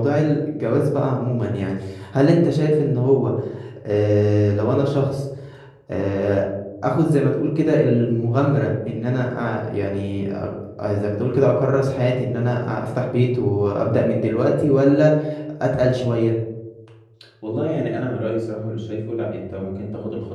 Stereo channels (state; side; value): identical; both; correlation 1.00